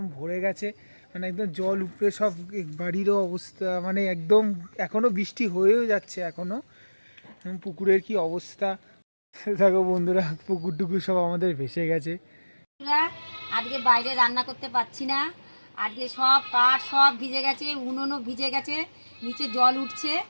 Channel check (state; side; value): inverted; both; correlation -1.00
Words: ভরে গেছে, মানে একদম জল উপরে সব। বাড়িরও অবস্থা মানে একদম এখনও বৃষ্টি হয়েও যাচ্ছে, এখনও পুকুরের কি অবস্থা দেখো বন্ধুরা, পুকুর টুকুর সব আমাদের ভেসে গেছে। আজকে বাইরে রান্না করতে পারছি না, আজকে সব কাঠ সব ভিজে গেছে, উনুনও ভিজে গেছে, নিচে জল উঠছে,